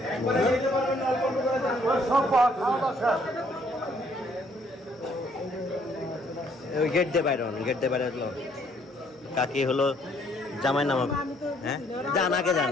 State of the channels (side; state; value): both; normal; correlation 0.65